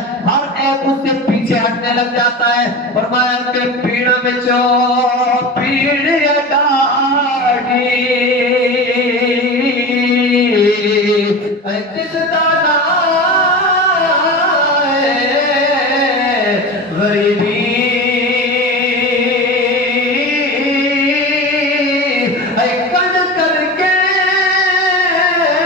ہر ایک اس سے پیچھے ہٹنے لگ جاتا ہے۔ فرمایا کہ پیڑ وچوں پیڑ اڈاڑی جس دا نام غریبی کڈ کر کے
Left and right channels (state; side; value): normal; both; correlation 0.29